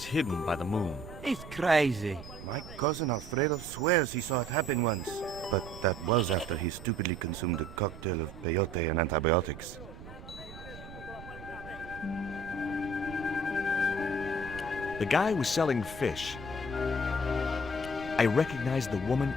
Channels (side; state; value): right; noise; rumble, 15 dB below the sound